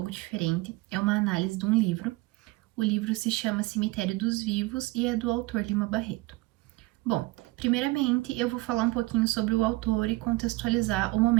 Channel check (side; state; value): left; quieter; 21.8 dB